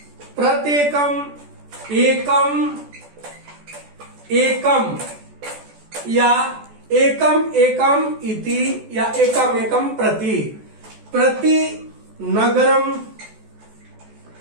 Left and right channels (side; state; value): left; late; 14 ms